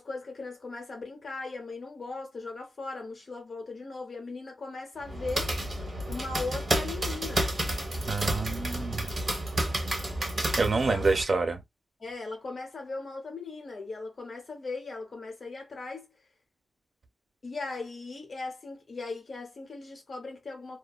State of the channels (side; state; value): both; normal; correlation 0.89